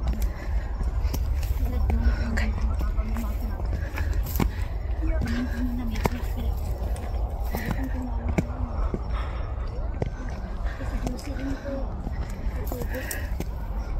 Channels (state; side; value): identical; both; correlation 1.00